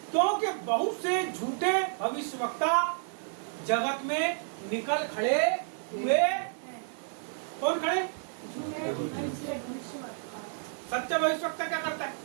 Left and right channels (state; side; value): silent; left; digital silence